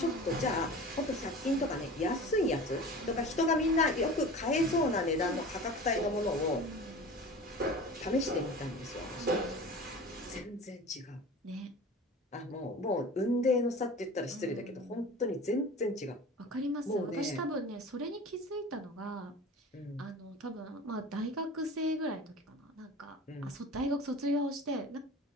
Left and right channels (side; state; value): both; normal; correlation 0.37